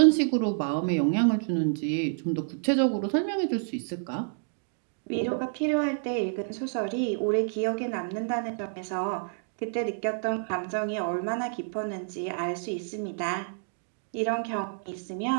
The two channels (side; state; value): left; silent; digital silence